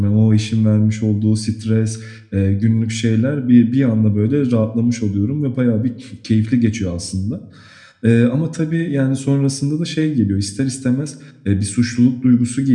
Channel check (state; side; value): identical; both; correlation 1.00